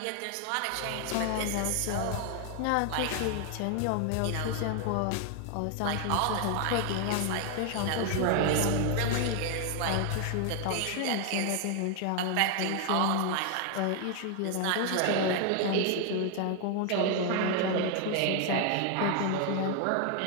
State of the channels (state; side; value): different; both; correlation 0.00